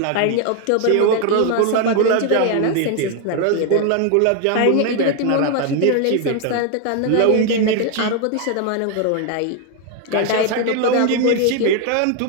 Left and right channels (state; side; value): different; both; correlation 0.01